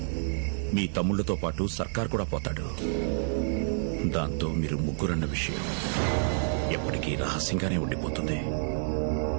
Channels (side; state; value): left; silent; 59 dB below the other